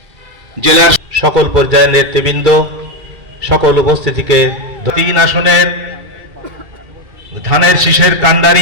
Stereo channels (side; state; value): left; late; 2.3 ms